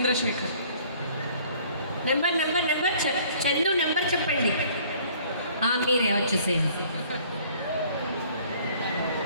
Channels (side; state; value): both; inverted; correlation -0.56